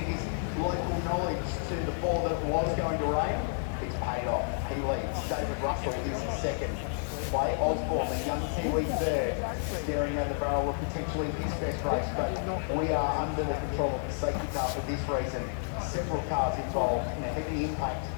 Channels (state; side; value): silent; right; digital silence